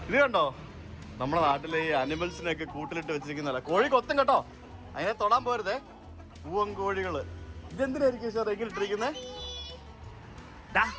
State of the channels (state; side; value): identical; both; correlation 1.00